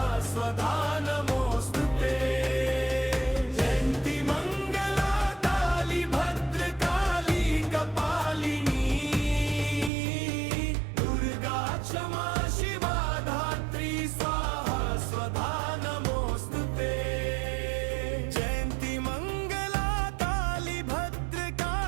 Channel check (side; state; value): left; drops out; at 9.9 s